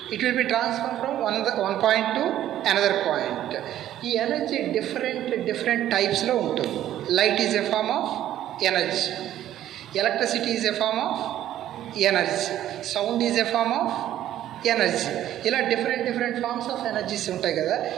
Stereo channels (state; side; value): quieter; left; 12.3 dB